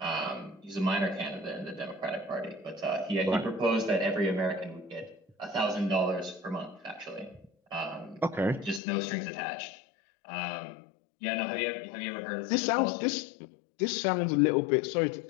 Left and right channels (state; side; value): drops out; right; at 8.8 s